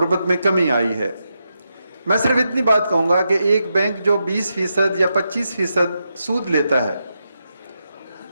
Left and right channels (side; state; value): both; inverted; correlation -0.85